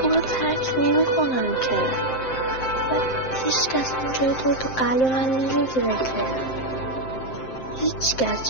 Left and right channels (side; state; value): right; late; 7.7 ms